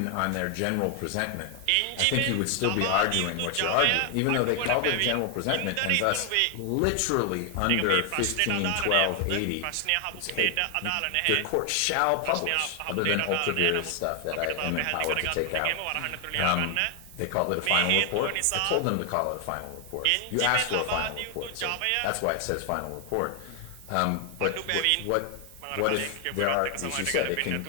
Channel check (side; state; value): both; different; correlation 0.00